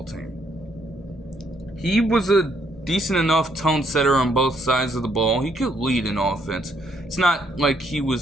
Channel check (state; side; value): normal; both; correlation 0.71